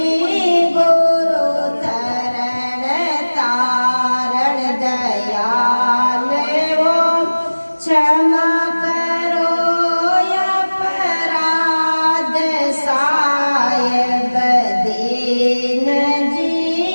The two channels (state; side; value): inverted; both; correlation -1.00